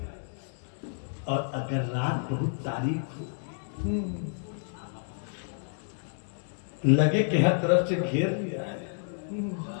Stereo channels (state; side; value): silent; right; digital silence